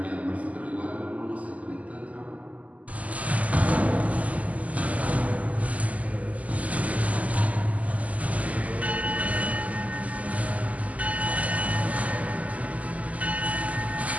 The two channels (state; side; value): late; left; 0.072 ms